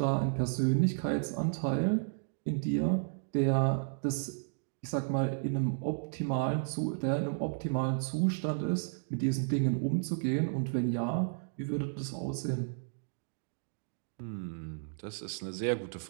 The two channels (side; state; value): left; silent; digital silence